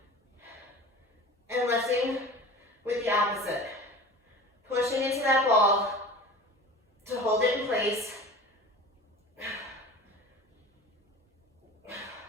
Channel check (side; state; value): both; normal; correlation 0.38